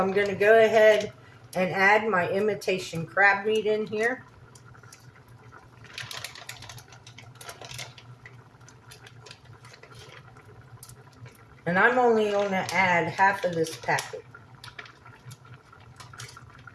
going to go ahead and add my imitation crab meat in here. And I'm only going to add half of this packet.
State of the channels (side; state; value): both; identical; correlation 1.00